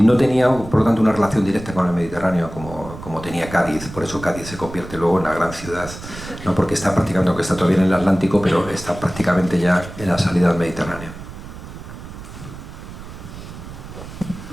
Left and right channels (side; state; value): right; noise; rumble, 13 dB below the sound